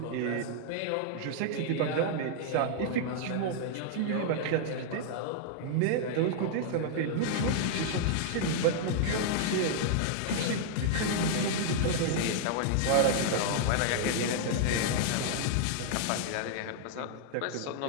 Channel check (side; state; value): both; different; correlation -0.01